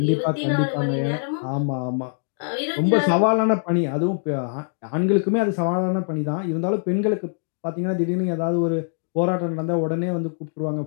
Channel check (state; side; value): silent; right; digital silence